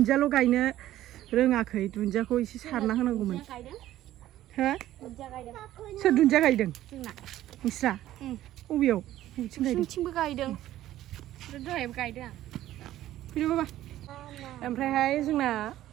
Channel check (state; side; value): quieter; left; 13.8 dB